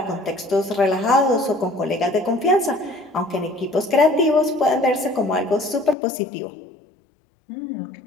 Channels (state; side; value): drops out; right; at 6.0 s